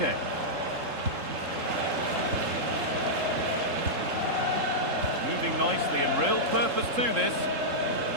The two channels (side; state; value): left; late; 3.7 ms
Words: Moving nicely and real purpose to this.